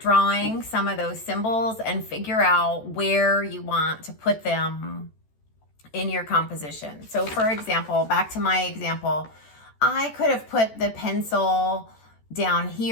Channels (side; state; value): right; late; 14 ms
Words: drawing some of those symbols and figure out where you want to put them in your composition. So for example, back to my example, I could have put the pencil down